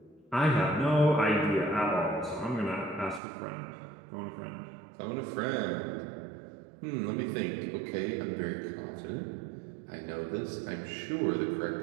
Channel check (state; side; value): drops out; left; at 3.2 s